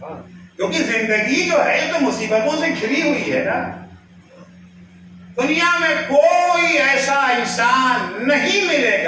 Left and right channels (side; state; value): both; identical; correlation 1.00